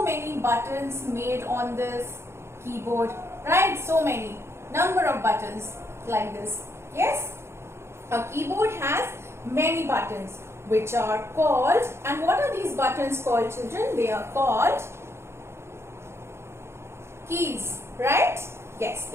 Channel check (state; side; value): late; left; 0.13 ms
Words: many buttons made on this keyboard, right? So many number of buttons like this. Yes, a keyboard has many buttons which are called, and what are these buttons called, children? They are called keys, right? Yes,